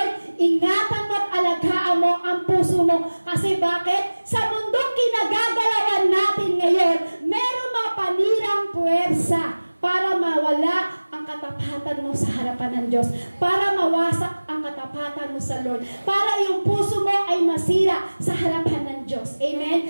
ingatan mo at alagaan mo ang puso mo. Kasi bakit? Sa mundong kinagagalawan natin ngayon, meron mga panirang puwersa para mawala ang katapatan mo sa harapan ng Diyos, para mawasak ang katapatan mo sa Lord, para yung puso mo ay masira sa harapan ng Diyos. Amen?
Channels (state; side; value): inverted; both; correlation -1.00